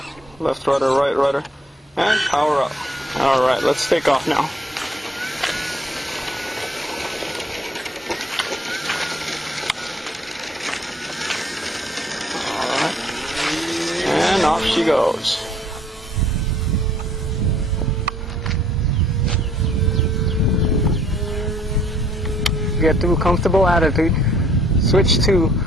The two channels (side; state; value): both; normal; correlation 0.62